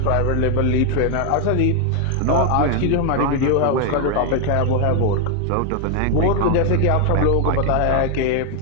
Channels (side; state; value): both; different; correlation 0.01